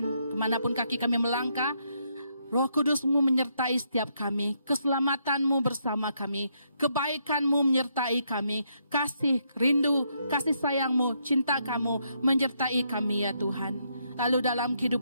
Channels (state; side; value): inverted; both; correlation -0.76